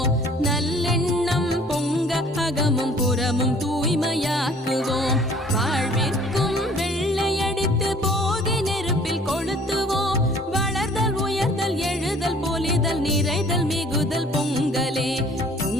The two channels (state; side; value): normal; both; correlation 0.54